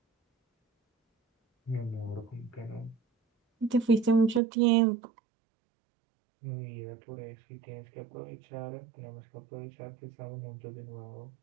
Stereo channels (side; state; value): left; drops out; at 4.4 s